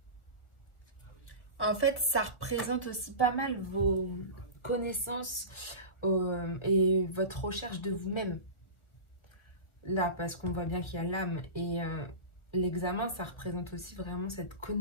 en fait, ça représente aussi pas mal vos connaissances et votre recherche de vous-même. Là, parce qu'on voit bien qu'il y a l'âme et l'examen, ça représente aussi vraiment cette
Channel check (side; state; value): right; late; 1.3 ms